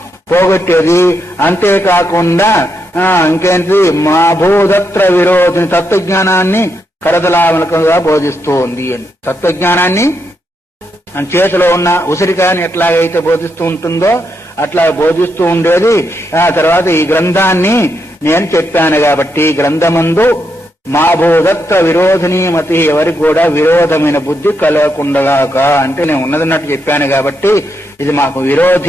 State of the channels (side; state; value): both; normal; correlation 0.81